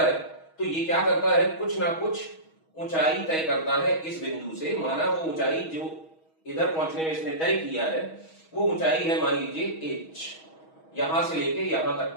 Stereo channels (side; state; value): right; late; 6.3 ms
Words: है तो ये क्या करता है, कुछ ना कुछ ऊंचाई तय करता है इस बिंदु से। माना वो ऊंचाई जो इधर पहुंचने में इसने तय किया है वो ऊंचाई है मान लीजिए h, यहां से लेके यहां तक